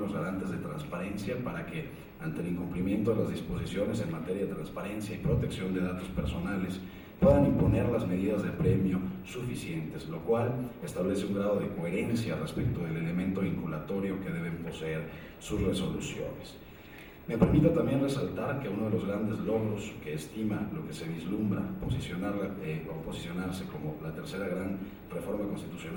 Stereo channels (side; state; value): both; identical; correlation 1.00